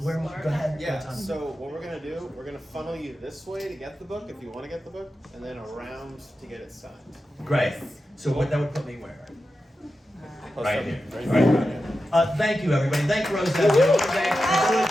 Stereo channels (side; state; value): both; normal; correlation 0.91